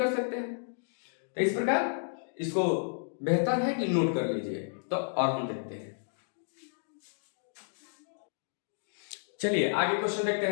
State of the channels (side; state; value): right; silent; digital silence